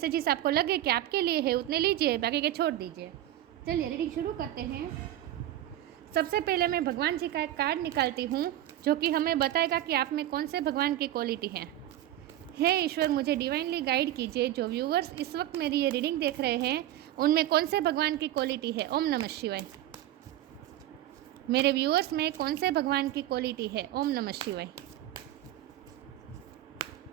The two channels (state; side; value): quieter; left; 13.5 dB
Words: आपको लगे कि आपके लिए है उतने लीजिए, बाकी के छोड़ दीजिए। चलिए रीडिंग शुरू करते हैं। सबसे पहले मैं भगवान जी का एक कार्ड निकालती हूँ जो कि हमें बताएगा कि आप में कौन से भगवान की क्वालिटी है। हे ईश्वर, मुझे डिवाइनली गाइड कीजिए। जो व्यूअर्स इस वक्त मेरी ये रीडिंग देख रहे हैं उनमें कौन से भगवान की क्वालिटी है। ओम नमः शिवाय। मेरे व्यूअर्स में कौन से भगवान की क्वालिटी है। ओम नमः शिवाय।